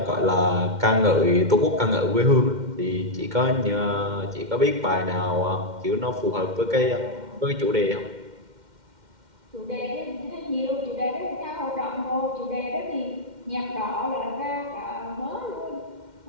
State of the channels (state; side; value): late; left; 2.1 ms